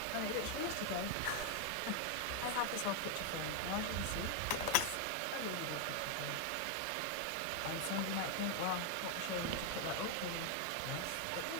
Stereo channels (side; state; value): both; different; correlation 0.00